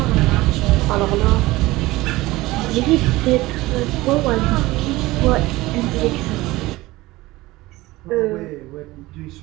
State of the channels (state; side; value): quieter; left; 19.2 dB